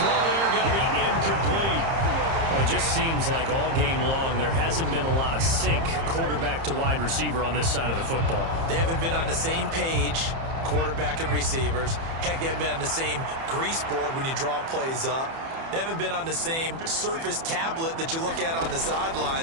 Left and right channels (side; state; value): left; late; 30 ms